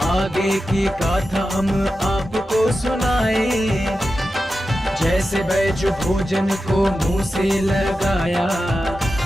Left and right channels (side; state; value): both; normal; correlation 0.92